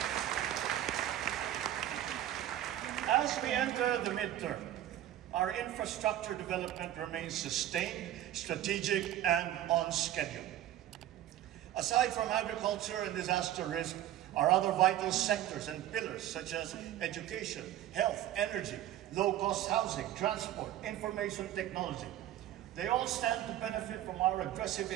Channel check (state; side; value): quieter; left; 12.6 dB